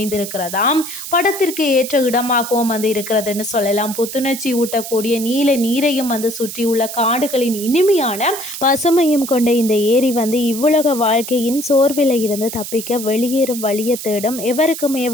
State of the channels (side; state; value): right; noise; hiss, 9 dB below the sound